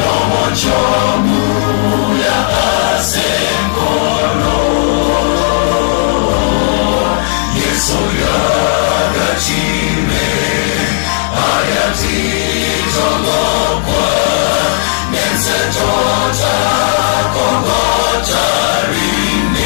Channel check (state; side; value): silent; right; digital silence